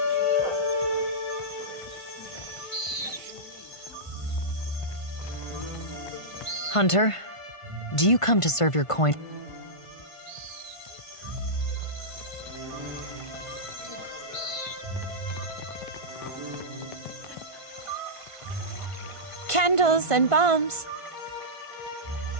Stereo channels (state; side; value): late; right; 1.5 ms